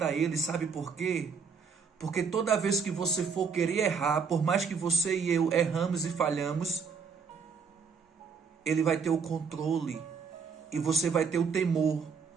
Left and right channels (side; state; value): left; quieter; 5.8 dB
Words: a ele, sabe por quê? Porque toda vez que você for querer errar, por mais que você e eu erramos e falhamos, ele vai ter o controle e você vai ter o temor.